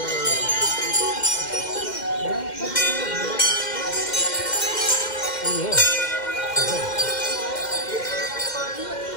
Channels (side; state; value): right; late; 2.1 ms